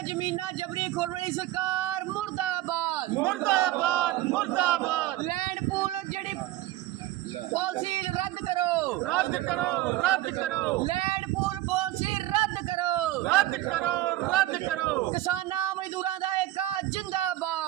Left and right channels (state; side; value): quieter; left; 15.6 dB